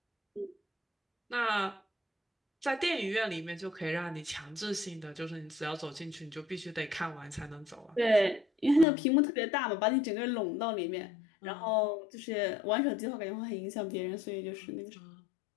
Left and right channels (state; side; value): drops out; right; at 8.8 s